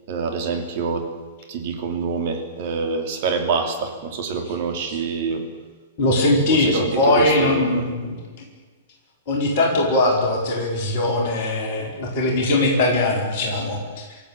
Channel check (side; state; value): both; inverted; correlation -0.36